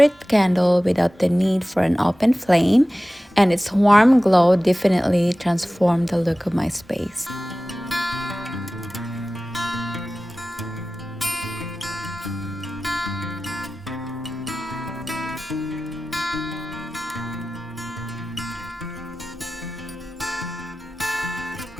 candle without the need for an open flame, and its warm glow definitely transformed the look of my space.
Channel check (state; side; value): normal; both; correlation 0.96